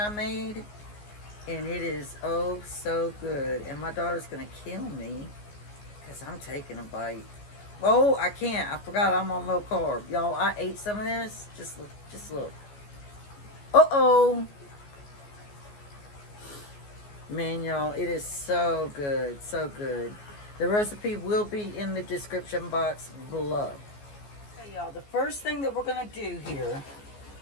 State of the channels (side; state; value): right; late; 14 ms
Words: made. And it is oh so good. And my daughter's going to kill me because I'm taking a bite. Oh, I can't. I forgot I'm on low carb. Y'all, I ate some of this. Just look. Just look. Uh-oh. Man, y'all, it is so good. So good. The recipe will be in the description box below. Okay, y'all, the first thing that we're going to do here,